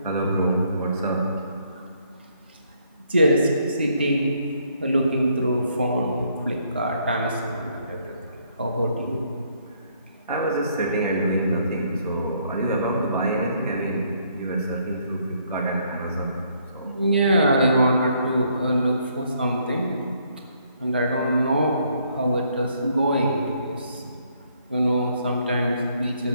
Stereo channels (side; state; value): both; inverted; correlation -0.69